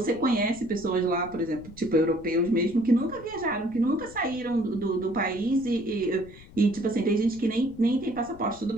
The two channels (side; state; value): left; noise; rumble, 20 dB below the sound